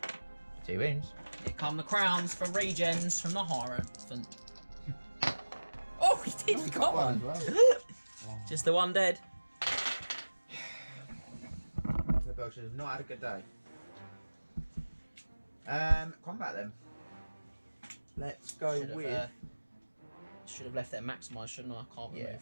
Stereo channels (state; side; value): inverted; both; correlation -1.00